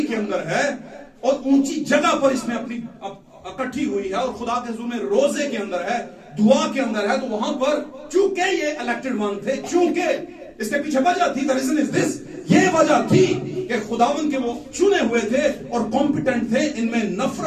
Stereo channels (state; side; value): identical; both; correlation 1.00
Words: के अंदर है, और ऊंची जगह पर इसमें अपनी इकट्ठी हुई है, और खुदा के हुजूर में रोजे के अंदर है, दुआ के अंदर है, तो वहां पर चूंकि ये इलेक्टेड वन थे, चूंकि इसके पीछे वजह थी, द रीजन इज दिस, ये वजह थी कि खुदावन के वो चुने हुए थे और कॉम्पिटेंट थे, इनमें